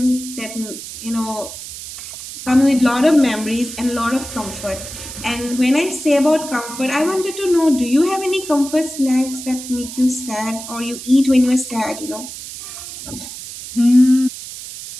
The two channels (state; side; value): noise; right; hiss, 11 dB below the sound